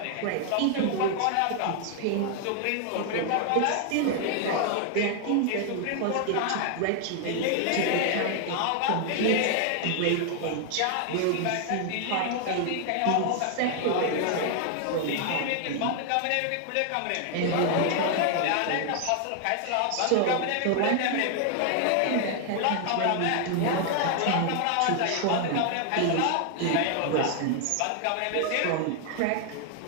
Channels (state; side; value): different; both; correlation 0.00